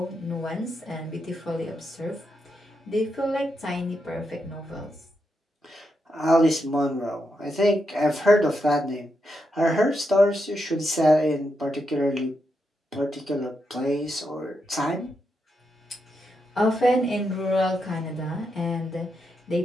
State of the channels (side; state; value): both; normal; correlation 0.83